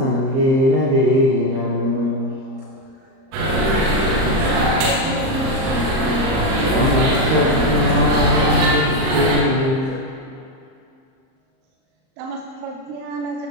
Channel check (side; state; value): left; late; 38 ms